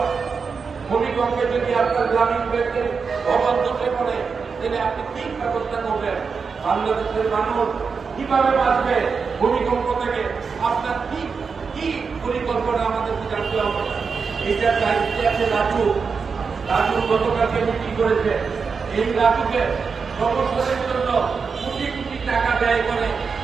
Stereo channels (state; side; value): quieter; left; 5.3 dB